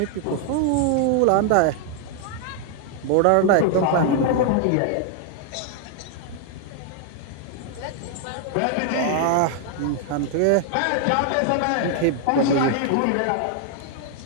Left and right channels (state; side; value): different; both; correlation 0.00